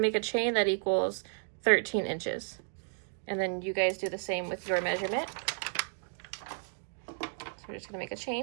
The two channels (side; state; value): left; silent; digital silence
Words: to make a chain that equals 13 inches. And then you guys do the same with your measurement. So we're just going to make a